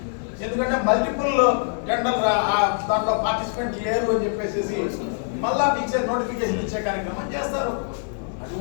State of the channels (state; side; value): silent; right; 61 dB below the other